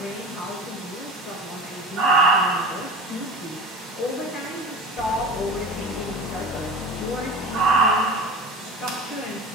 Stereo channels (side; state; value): both; normal; correlation 0.32